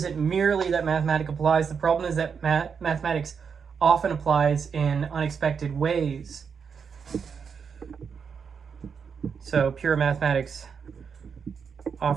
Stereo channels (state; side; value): quieter; left; 6.4 dB